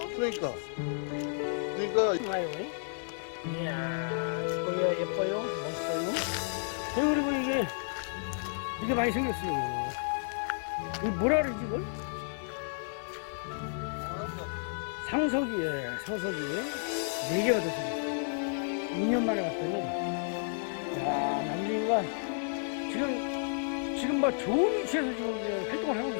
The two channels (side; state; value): right; silent; 56 dB below the other